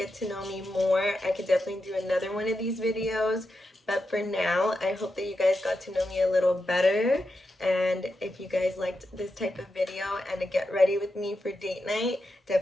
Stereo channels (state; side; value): normal; both; correlation 0.88